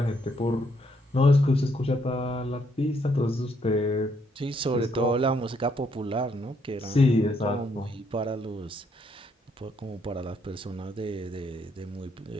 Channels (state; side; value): normal; both; correlation 0.72